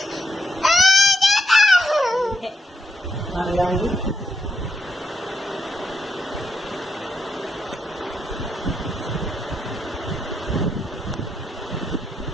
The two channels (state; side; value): normal; both; correlation 0.82